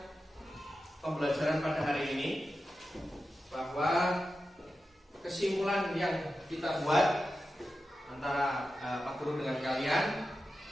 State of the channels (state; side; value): normal; both; correlation 0.92